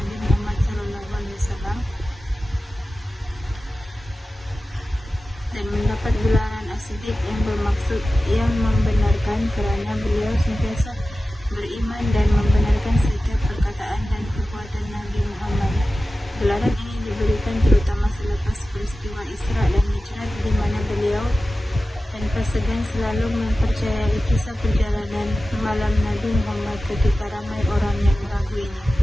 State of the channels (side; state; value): both; normal; correlation 0.95